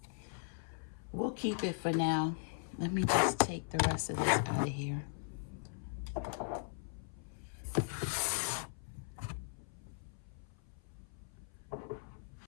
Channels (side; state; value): right; silent; 52 dB below the other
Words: We'll keep it for now. Let me just take the rest of this out of here.